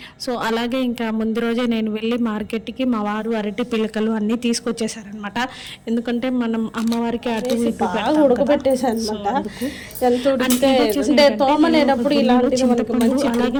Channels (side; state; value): both; identical; correlation 1.00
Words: సో అలాగే ఇంకా ముందు రోజే నేను వెళ్ళి మార్కెట్కి మా వారు అరటి పిల్లకలు అన్నీ తీసుకొచ్చేసారనమాట. ఎందుకంటే మనం అమ్మవారికి అటు ఇటు ఉడకబెట్టేసాను అనమాట. తోమలేనప్పుడు ఇలాంటివి మనకు మంచి